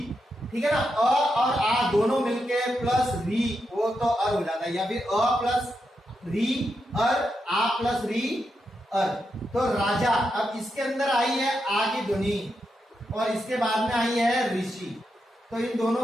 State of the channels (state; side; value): normal; both; correlation 0.85